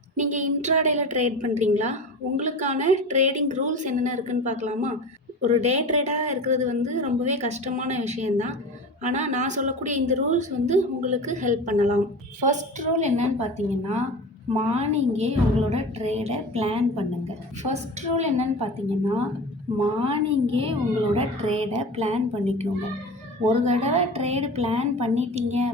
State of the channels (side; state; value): both; normal; correlation 0.33